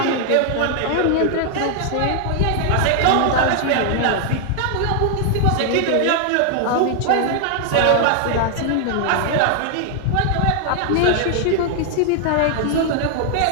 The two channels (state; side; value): different; both; correlation 0.00